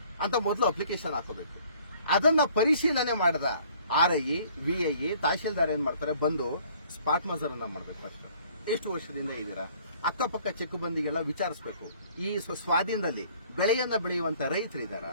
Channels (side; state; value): both; inverted; correlation -0.57